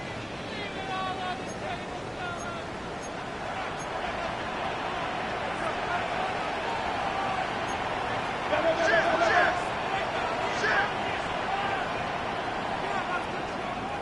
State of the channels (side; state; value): both; identical; correlation 1.00